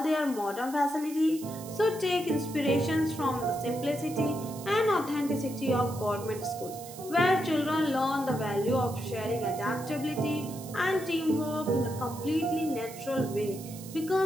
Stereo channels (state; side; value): noise; right; hiss, 15 dB below the sound